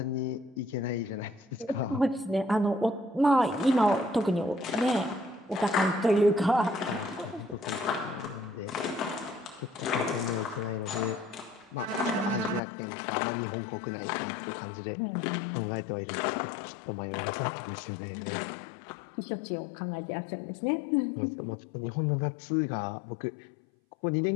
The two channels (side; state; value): right; drops out; at 12.6 s